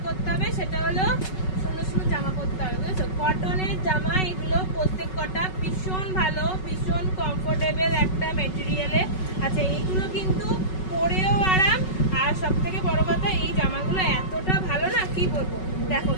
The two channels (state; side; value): late; right; 5.3 ms